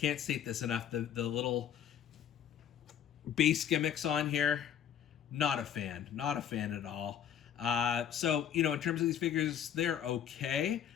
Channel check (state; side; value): quieter; right; 9.4 dB